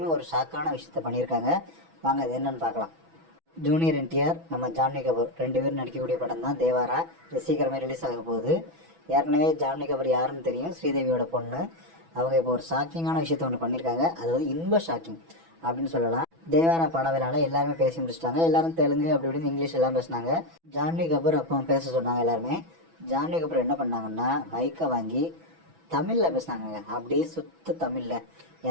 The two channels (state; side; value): late; left; 6.1 ms